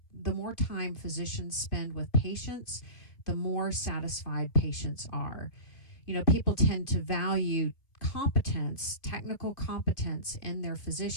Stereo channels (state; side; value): late; right; 2.4 ms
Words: physicians spend with patients, the more satisfied patients are. People tend to value competence, technical competence in their